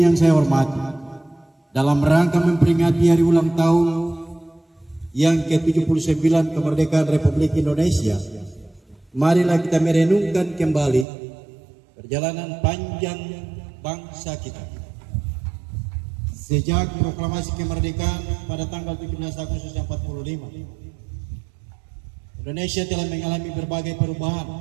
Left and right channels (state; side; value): drops out; left; at 11.1 s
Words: saya hormati, dalam rangka memperingati Hari Ulang Tahun yang ke-79 Kemerdekaan Republik Indonesia, marilah kita merenungkan kembali perjalanan panjang bangsa kita. Sejak proklamasi kemerdekaan pada tanggal 17 Agustus 45, Indonesia telah mengalami berbagai